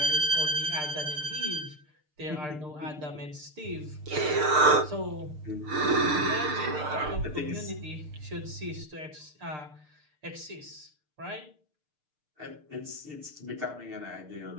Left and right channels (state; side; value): late; left; 6.6 ms